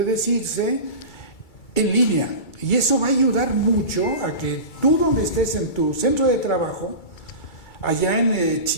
decirse, en línea. Y eso va a ayudar mucho a que tú, donde estés en tu centro de trabajo, allá en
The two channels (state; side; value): late; right; 2.3 ms